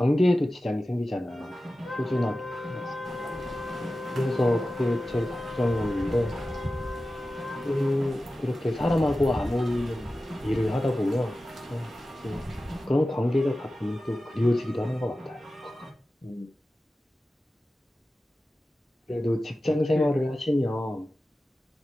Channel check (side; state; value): both; normal; correlation 0.94